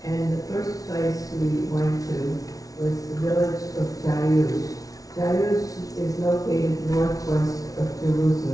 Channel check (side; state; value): right; late; 0.18 ms